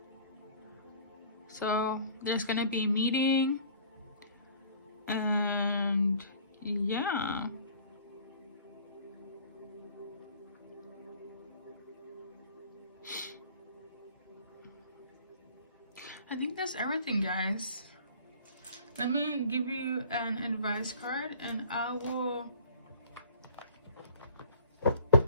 So there's gonna be a meeting, and yeah. I think that's everything, guys. Let me give you an advice card and I will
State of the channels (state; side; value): inverted; both; correlation -0.50